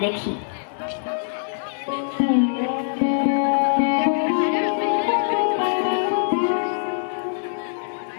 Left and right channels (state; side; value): silent; right; 62 dB below the other